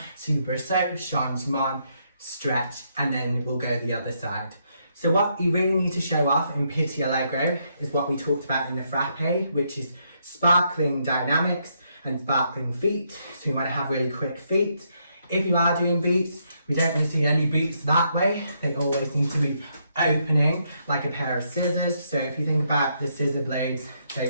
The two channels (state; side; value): inverted; both; correlation -0.76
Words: super saut, changement, stretch, and then we'll go the other side. So what you really need to show off in Pitti Allegro is what we talked about in the frappe, which is sparkling dynamics and sparkling feet. So you want to have really quick feet. If you are doing beats, we don't really see any beats that way. They always need to be opening like a pair of scissors. So if you think about the scissor blades,